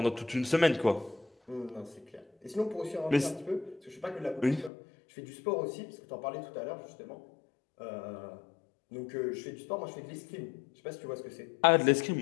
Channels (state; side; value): drops out; right; at 4.7 s